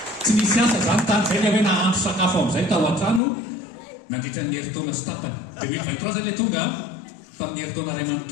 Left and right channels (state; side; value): drops out; right; at 3.2 s